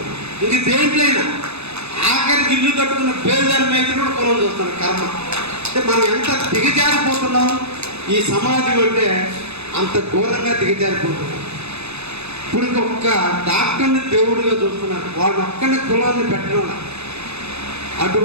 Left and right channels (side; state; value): left; late; 0.80 ms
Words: ఇది దేంట్లైనా ఆఖరికి ఇల్లు కట్టుకున్న పేదల మీద కూడా కులం చూస్తున్నారు. కర్మ అంటే మనం ఎంత దిగజారిపోతున్నాం ఈ సమాజం అంటే అంత ఘోరంగా దిగజారిపోతున్నాం. ఇప్పుడు ఒక్క డాక్టర్ని దేవుడిగా చూస్తున్నారు, వాళ్ళ ఒక్కరిని కులాన్ని పెట్టడం.